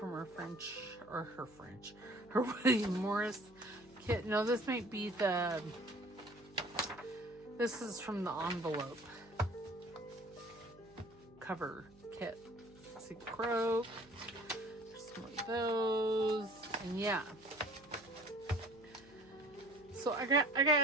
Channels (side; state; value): right; noise; hum, 25 dB below the sound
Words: her William Morris kit. No, this might be this is from the envelope cover kit. See, Croak. There's some of those. And yeah. So I